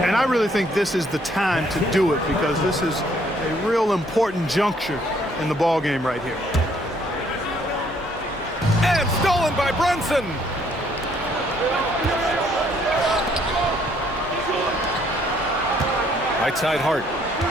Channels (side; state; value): both; normal; correlation 0.65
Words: And I really think this is the time to do it because this is a real important juncture in the ball game right here. And stolen by Brunson. Right side Hart.